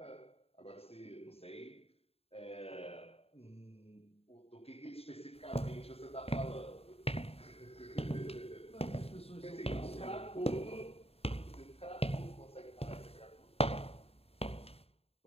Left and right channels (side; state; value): right; late; 0.29 ms